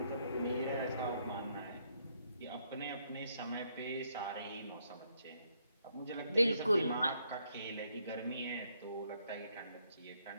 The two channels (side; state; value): both; inverted; correlation -0.73